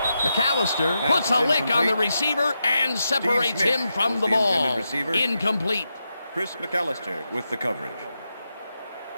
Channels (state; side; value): inverted; both; correlation -0.87